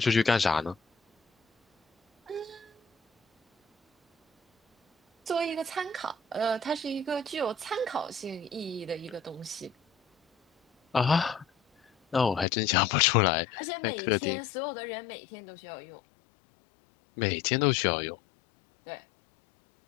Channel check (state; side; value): drops out; right; at 12.5 s